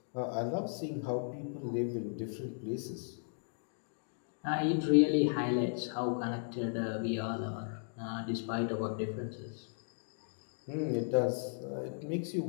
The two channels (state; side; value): silent; right; digital silence